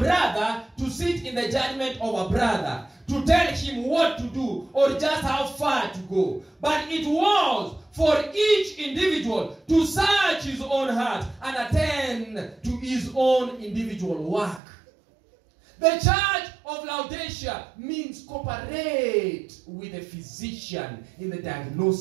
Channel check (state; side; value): drops out; left; at 14.6 s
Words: to sit in the judgment of a brother, to tell him what to do or just how far to go. But it was for each individual to search his own heart and attend to his own individual work. The church of Laodicea means cooperate with a physician in the